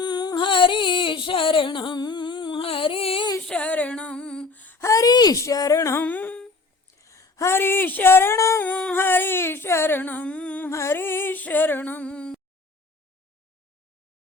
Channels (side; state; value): right; quieter; 3.9 dB